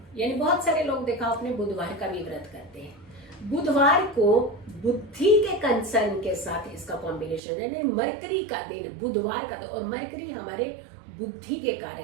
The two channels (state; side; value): drops out; left; at 7.4 s